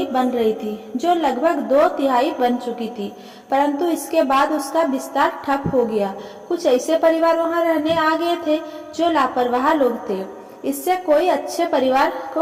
बन रही थी जो लगभग 2/3 बन चुकी थी, परंतु इसके बाद उसका विस्तार ठप हो गया। कुछ ऐसे परिवार वहां रहने आ गए थे जो लापरवाह लोग थे। इससे कोई अच्छे परिवार को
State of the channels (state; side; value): identical; both; correlation 1.00